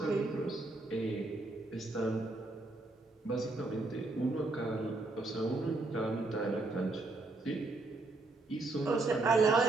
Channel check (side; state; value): left; quieter; 3.1 dB